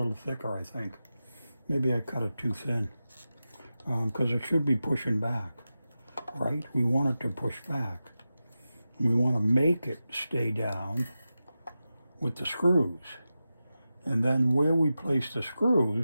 thicker, I think. Maybe I cut it too thin because it should be pushing back, right? We want it to push back. We want to make it stay down with the screws. And then where we place the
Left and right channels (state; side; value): inverted; both; correlation -0.93